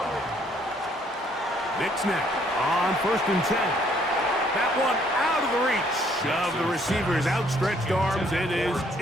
Nix now on 1st and 10. That one out of the reach of the receiver's outstretched arms. It is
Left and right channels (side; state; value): both; normal; correlation 0.65